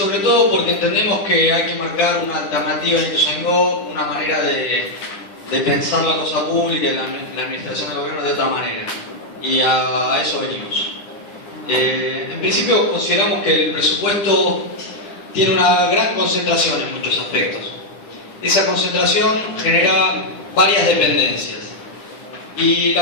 todo porque entendemos que hay que marcar una alternativa en Ituzaingó, una manera de pensar la cosa pública y la administración del gobierno de otra manera, y a eso venimos. En principio consideramos que el presupuesto tiene una gran concentración en muchos aspectos. Esa concentración genera varias dependencias, y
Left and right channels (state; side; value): late; right; 10 ms